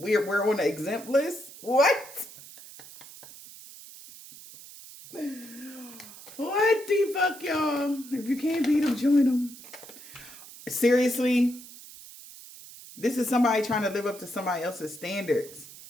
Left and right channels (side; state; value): right; noise; hiss, 17 dB below the sound